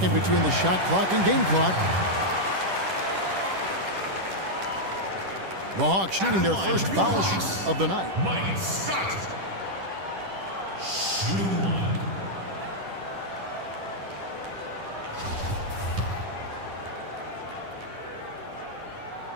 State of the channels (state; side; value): late; left; 10 ms